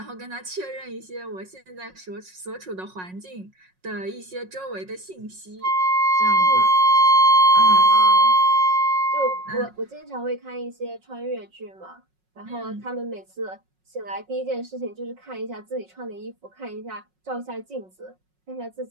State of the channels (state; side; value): late; left; 5.4 ms